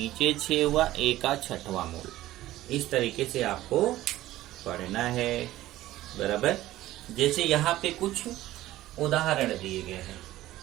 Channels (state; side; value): quieter; left; 15.5 dB